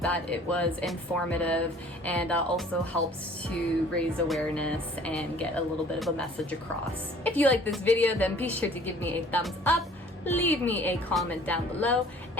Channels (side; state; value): both; normal; correlation 0.52